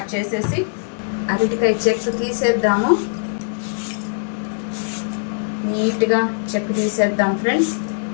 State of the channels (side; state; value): right; silent; digital silence